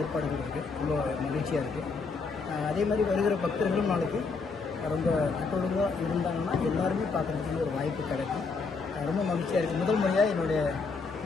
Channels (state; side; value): quieter; right; 4.5 dB